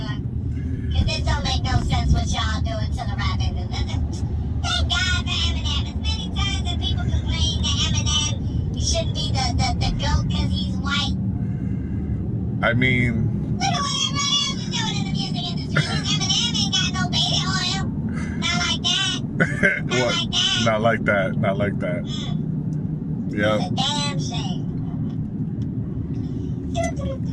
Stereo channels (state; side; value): identical; both; correlation 1.00